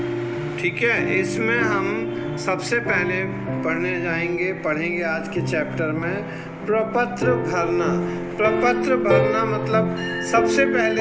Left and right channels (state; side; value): identical; both; correlation 1.00